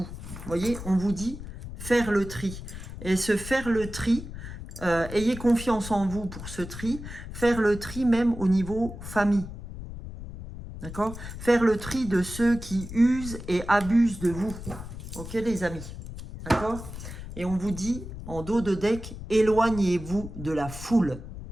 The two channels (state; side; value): noise; left; rumble, 11 dB below the sound